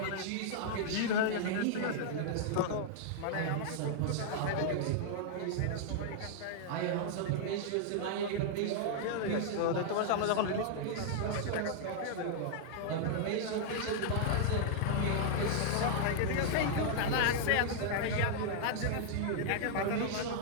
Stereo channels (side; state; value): both; different; correlation -0.01